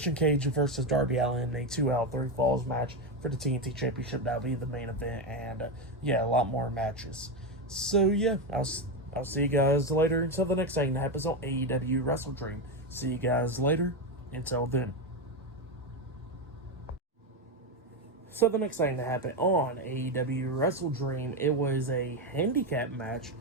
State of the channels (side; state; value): both; normal; correlation 0.11